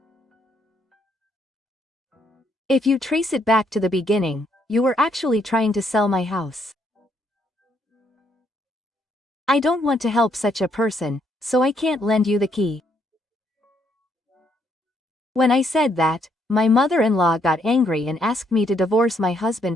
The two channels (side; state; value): both; normal; correlation 0.72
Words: If you trace it back to the beginning, you were actually trying to sell my house. I don't want to help such a person, so I can't lend you the key. When I said that, my mother-in-law got angry and asked me to divorce my